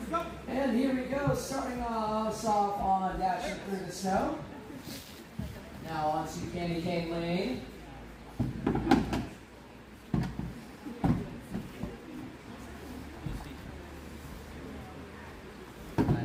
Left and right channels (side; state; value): both; identical; correlation 1.00